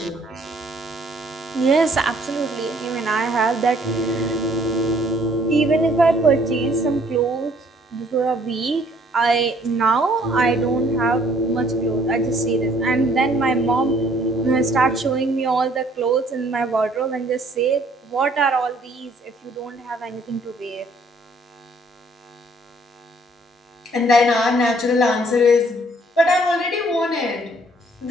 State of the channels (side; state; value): both; normal; correlation 0.62